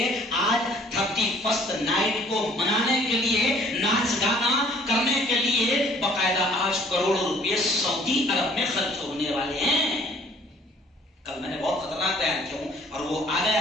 آج 31 نائٹ کو منانے کے لیے، ناچ گانا کرنے کے لیے باقاعدہ آج کروڑوں روپئے سعودی عرب میں خرچ ہونے والے ہیں. کل میں نے بہت خطرناک بیان کیا ہوں اور وہ آ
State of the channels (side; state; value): both; normal; correlation 0.57